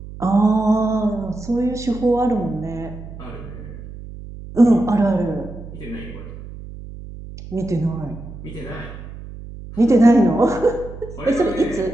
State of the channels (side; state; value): right; noise; hum, 13 dB below the sound